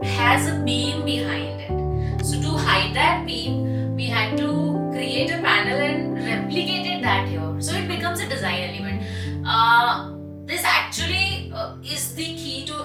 has a beam behind it. So to hide that beam, we had to create a panel and replicated that here. So it becomes a design element. This actually is the key to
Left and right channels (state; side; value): identical; both; correlation 1.00